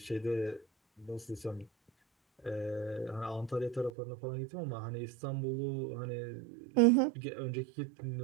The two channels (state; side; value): drops out; left; at 3.9 s